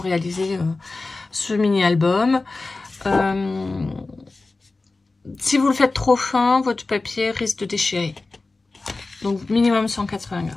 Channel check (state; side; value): quieter; right; 3.5 dB